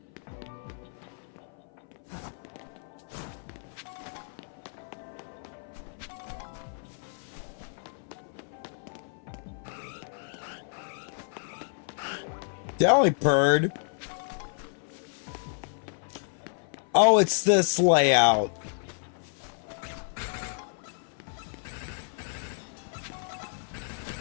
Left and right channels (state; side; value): silent; right; 55 dB below the other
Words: Delibird. Oh, it's this layout.